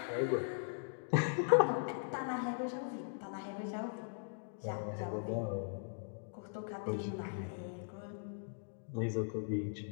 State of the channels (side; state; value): right; silent; digital silence